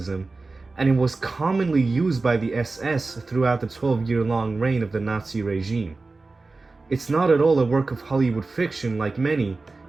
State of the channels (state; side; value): quieter; left; 3.6 dB